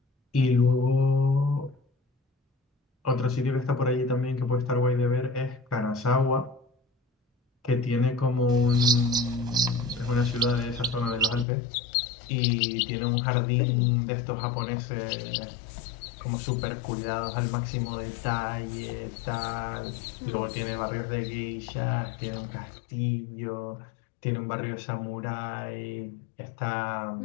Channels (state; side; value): drops out; right; at 11.5 s